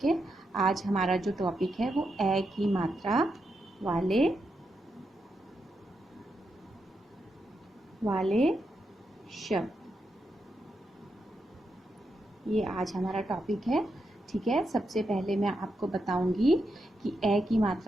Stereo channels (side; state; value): both; normal; correlation 0.84